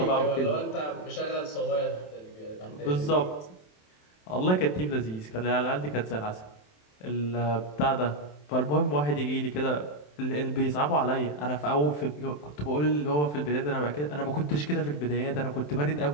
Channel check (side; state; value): right; late; 27 ms